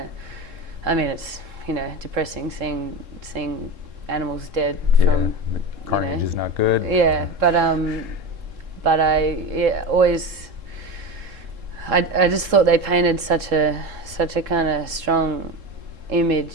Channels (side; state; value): left; late; 3.7 ms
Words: I mean, it's depressing seeing animals dead from Carnage is not good. yeah, but I always I just thought they painted such a kind of strong